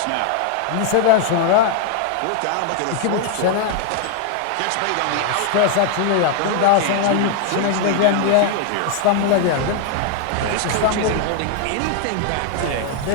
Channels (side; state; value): both; different; correlation 0.00